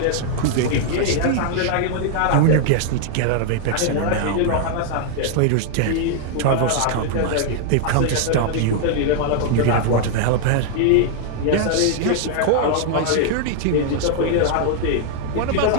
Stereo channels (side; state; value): both; different; correlation 0.00